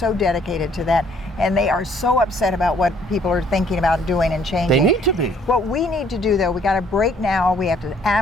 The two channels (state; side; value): normal; both; correlation 0.62